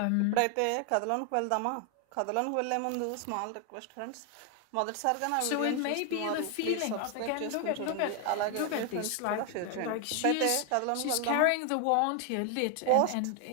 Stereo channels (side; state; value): both; different; correlation 0.00